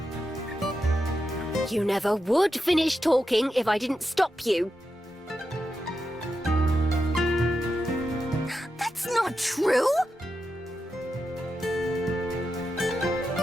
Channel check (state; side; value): normal; both; correlation 0.88